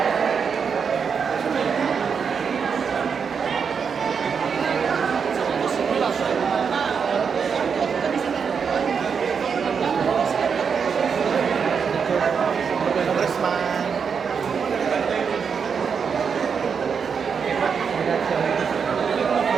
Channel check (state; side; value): quieter; left; 6.3 dB